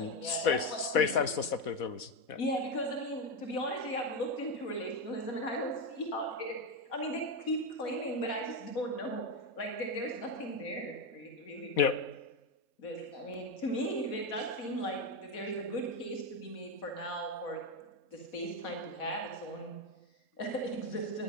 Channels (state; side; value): late; right; 4.1 ms